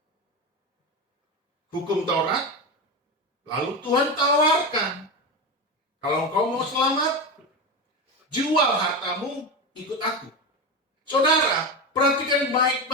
hukum Taurat, lalu Tuhan tawarkan, kalau engkau mau selamat, jual hartamu, ikut aku. Saudara, perhatikan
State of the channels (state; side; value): normal; both; correlation 0.19